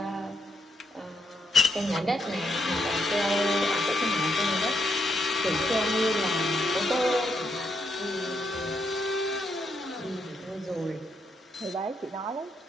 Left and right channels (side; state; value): both; normal; correlation 0.77